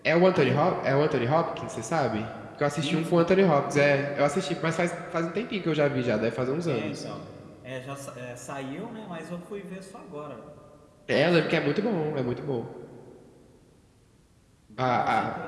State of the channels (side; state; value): both; identical; correlation 1.00